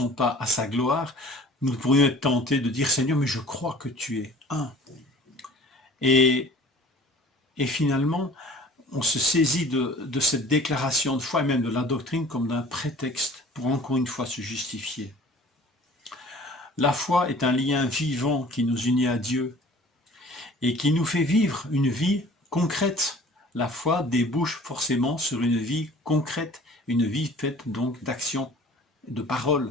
pas à sa gloire, nous pourrions être tentés de dire, Seigneur, mais je crois que tu es un. Et finalement, on se saisit de cette déclaration de foi et même de la doctrine comme d'un prétexte pour encore une fois se justifier. La foi est un lien vivant qui nous unit à Dieu et qui nous fait vivre une vie concrète. La foi débouche forcément sur une vie concrète, une vie faite donc d'action, de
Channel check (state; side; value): normal; both; correlation 0.48